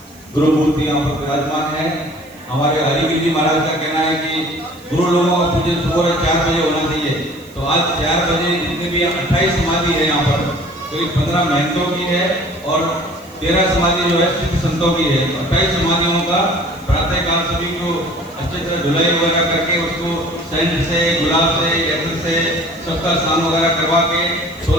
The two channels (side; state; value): right; noise; hiss, 26 dB below the sound